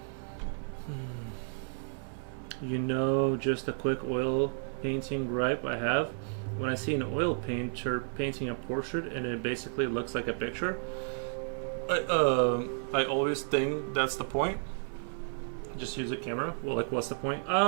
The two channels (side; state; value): left; silent; 56 dB below the other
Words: Just a quick oil painting gripe I have. When I see an oil painter painting a portrait and it basically looks like a picture, I always think that's the point. Just use a camera. Well, what's the point?